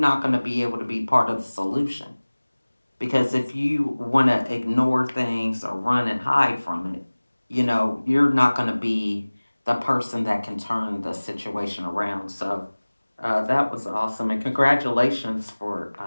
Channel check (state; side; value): inverted; both; correlation -1.00